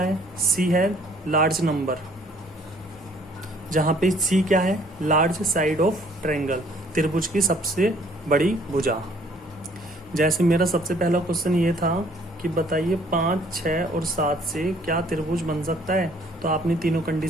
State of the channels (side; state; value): both; normal; correlation 0.59